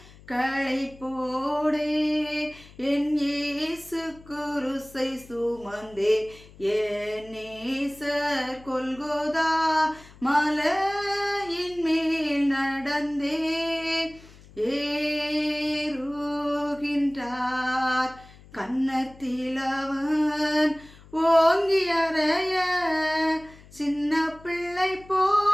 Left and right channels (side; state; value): left; noise; hum, 22 dB below the sound